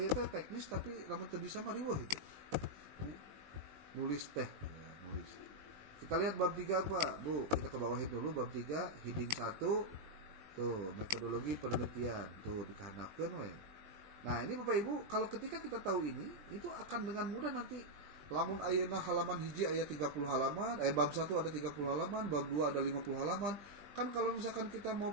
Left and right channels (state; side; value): late; left; 20 ms